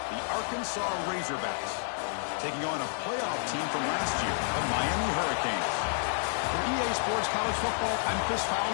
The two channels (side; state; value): right; silent; digital silence